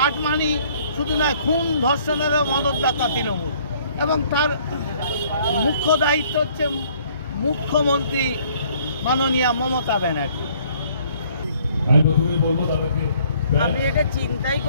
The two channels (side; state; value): both; inverted; correlation -0.60